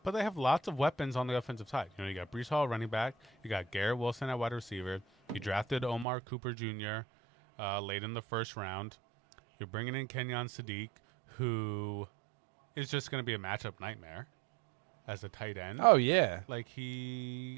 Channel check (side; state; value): left; drops out; at 6.1 s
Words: they have lots of weapons on the offensive side. You got Brees Hall running back. You got Garrett Wilson at wide receiver. You drafted Omar Cooper Jr. Late in the first round. You're bringing in Kenyon Sadiq, who is just going to be a matchup nightmare as a tight end. Oh yeah, Like